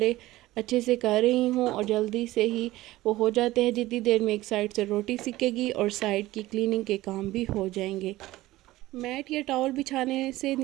अच्छे से कर रही हूँ और जल्दी से ही वो हो जाते हैं। जितनी देर में एक साइड से रोटी सिकेगी और साइड की क्लीनिंग के काम भी हो जाएंगे। मैट या टॉवल बिछाने से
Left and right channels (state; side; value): quieter; left; 17.1 dB